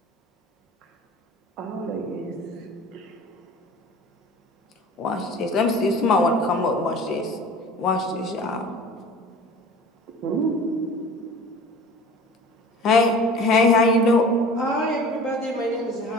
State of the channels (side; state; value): both; normal; correlation 0.41